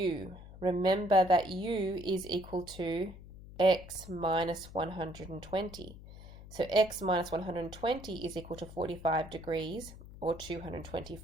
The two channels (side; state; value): left; noise; hum, 16 dB below the sound